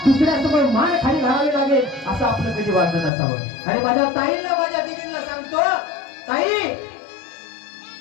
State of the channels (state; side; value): drops out; right; at 3.1 s